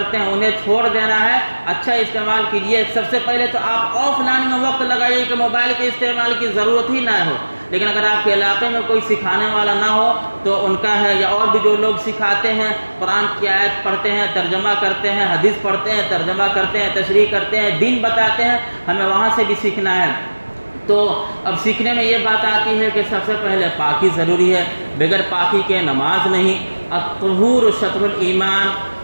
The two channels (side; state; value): both; inverted; correlation -1.00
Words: ہیں انہیں چھوڑ دینا ہے، اچھا استعمال کیجیے۔ سب سے پہلے تو آپ آف لائن میں وقت لگائیے کہ موبائل کے استعمال کی ضرورت ہی نہ ہو۔ لیکن اگر آپ کے علاقے میں کوئی سکھانے والا نہ ہو تو ان کا ہے، یا اور بھی جو لوگ سکھاتے ہیں، قرآن کی آیت پڑھتے ہیں، ترجمہ کرتے ہیں، حدیث پڑھتے ہیں، ترجمہ کرتے ہیں، تشریح کرتے ہیں، دین بتاتے ہیں، ہمیں وہاں سے بھی سیکھنا ہے۔ تو اب سیکھنے میں یہ بات آتی ہے کہ سب سے پہلے پاکی ضروری ہے، بغیر پاکی کے نماز نہیں۔ الطہور شطر الایمان،